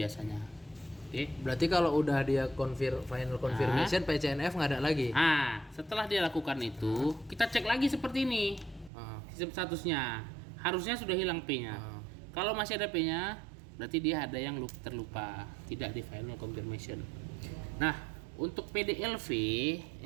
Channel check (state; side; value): drops out; left; at 8.9 s